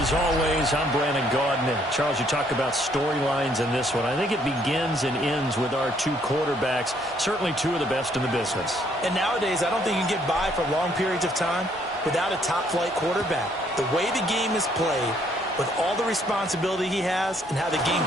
always, I'm Brandon Gaudin. Charles, you talk about storylines in this one. I think it begins and ends with our two quarterbacks, certainly two of the best in the business. And nowadays, I don't think you can get by for long periods of time without a top-flight quarterback. The way the game is played, with all the responsibility he has and how the game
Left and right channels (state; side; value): normal; both; correlation 0.67